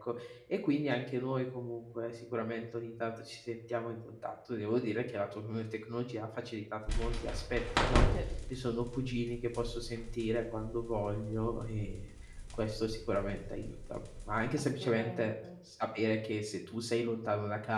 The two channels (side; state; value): both; identical; correlation 1.00